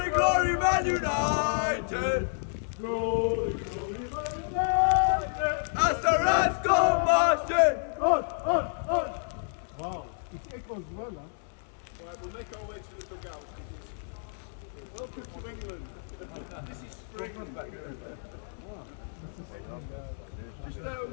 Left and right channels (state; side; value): silent; right; 58 dB below the other